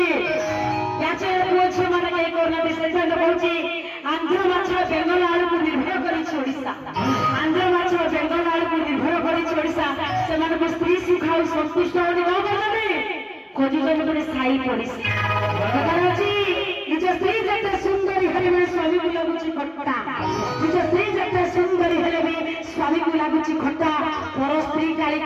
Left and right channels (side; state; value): both; identical; correlation 1.00